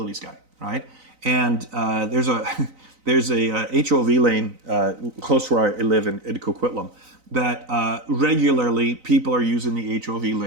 guy, right? And there's a HOV lane close to where I live in Coquitlam that regularly people are using the HOV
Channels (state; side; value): late; left; 3.9 ms